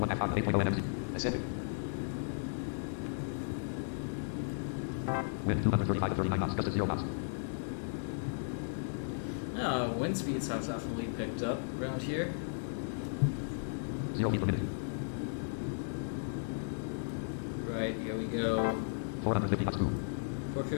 half 8.0 NMC. Ascending. Wind 235 to 39 knots. Just at 0 knots. Wind speeds have definitely picked up around here. 0 feet per minute. Right, here we go. 450 knots.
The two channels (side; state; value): right; silent; digital silence